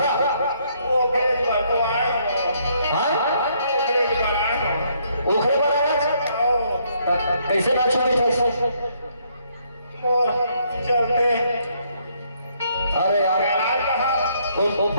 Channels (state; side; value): inverted; both; correlation -0.69